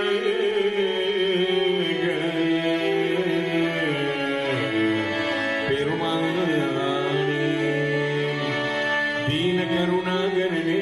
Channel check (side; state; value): both; identical; correlation 1.00